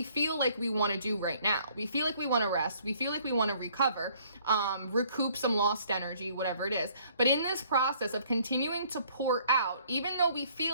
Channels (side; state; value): both; inverted; correlation -0.61